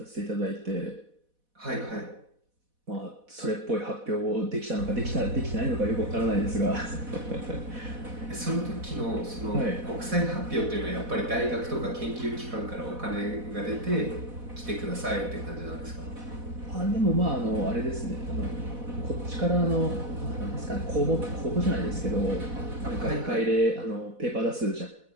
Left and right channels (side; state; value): left; late; 4.1 ms